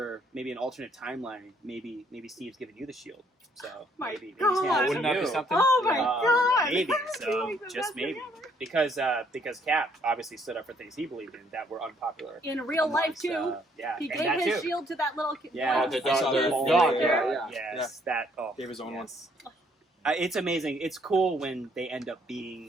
maybe an alternate timeline, maybe Steve's giving you the shield. So My maybe God. he's handing it Wouldn't to that be you. something? Oh my Yeah. God! Maybe We're so, like the just best maybe together. because Cap obviously stood up for things he believed in that were unpopular In real life amongst, too, yeah, he and gave that his too. shield to that little kid. Yeah, the kid dog, who's the sitting dog, there. yeah. Yes, that. Oh, Gave his own yes. It's amazing. It's cool when they end up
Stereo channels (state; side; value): normal; both; correlation 0.66